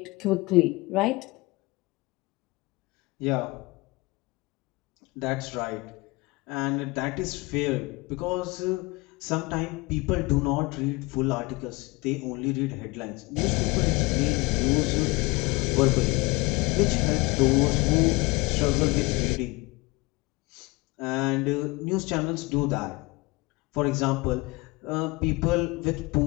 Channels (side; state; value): right; quieter; 24.0 dB